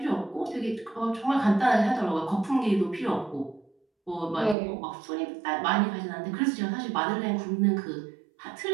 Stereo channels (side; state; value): left; drops out; at 4.5 s